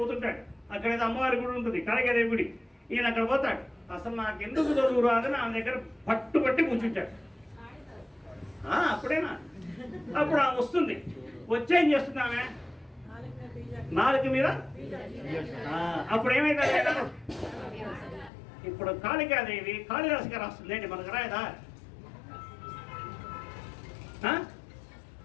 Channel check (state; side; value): drops out; right; at 18.3 s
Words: అక్కడ ఏదో అమ్మవారి గుడి ఉంటుంది, కాళికాదేవి గుడి. ఈయన అక్కడ పోతాడు. అసలు నాకు ఎందుకు చదువు రాదని ఆమె దగ్గర పట్టుబట్టి కూర్చుంటాడు. అప్పుడేనా? అప్పుడు ఆమె వస్తుంది. వచ్చేం చేస్తుంది ఆమె? నాలుగు మీద. అప్పుడు ఏమైంది? ఇప్పుడు కాళికాదేవి కాళిదాసు గారు వస్తుంది ఏంటి, మనకు రాయదా?